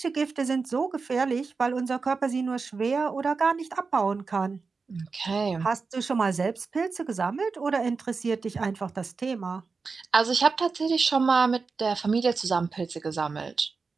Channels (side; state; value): left; quieter; 4.6 dB